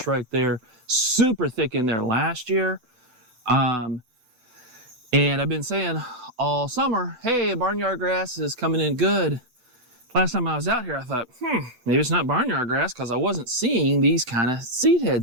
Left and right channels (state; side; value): late; left; 8.0 ms